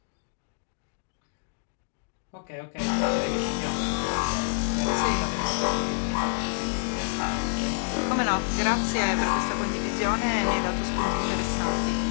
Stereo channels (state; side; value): silent; right; digital silence